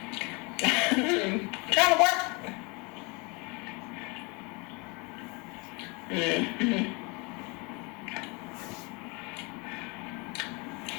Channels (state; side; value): quieter; right; 29.3 dB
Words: Trying to work.